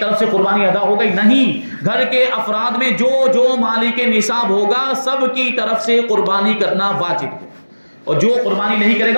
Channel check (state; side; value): inverted; both; correlation -1.00